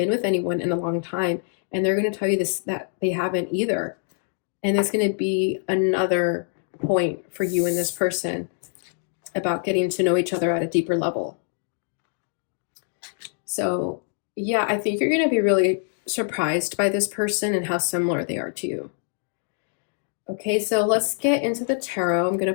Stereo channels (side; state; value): right; silent; digital silence